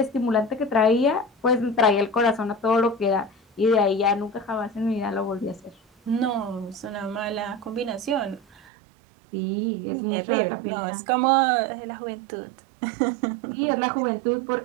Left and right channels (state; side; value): drops out; left; at 8.6 s